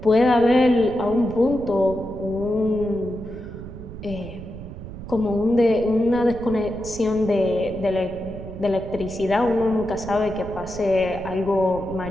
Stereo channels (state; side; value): noise; right; rumble, 12 dB below the sound